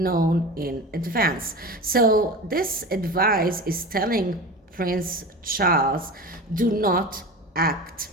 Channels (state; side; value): normal; both; correlation 0.31